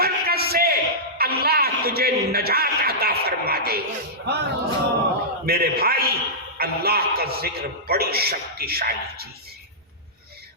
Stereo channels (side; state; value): both; normal; correlation -0.14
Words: سے اللہ تجھے نجات عطا فرما دے گا۔ میرے بھائی، اللہ کا ذکر بڑی شکتیشالی چیز ہے،